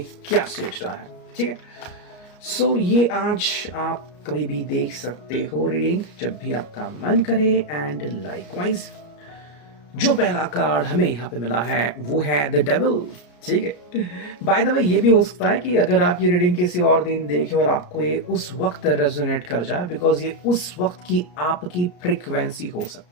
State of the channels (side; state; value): right; late; 34 ms